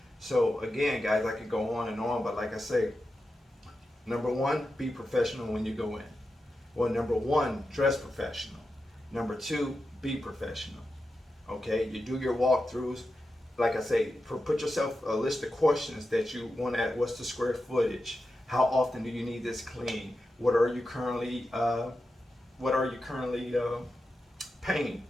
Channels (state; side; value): normal; both; correlation 0.90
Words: so again, guys, I could go on and on, but like I say, number one, be professional when you go in. Well, number one, dress professional. Number two, be professional. Okay, you do your walkthroughs. Like I say, put yourself a list of questions that you want to add. What's the square footage? How often do you need this clean? What are you currently paying